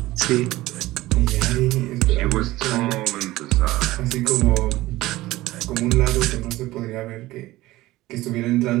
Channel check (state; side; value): quieter; left; 17.6 dB